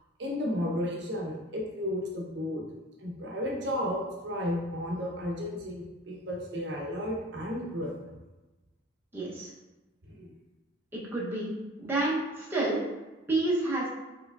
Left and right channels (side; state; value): both; normal; correlation 0.44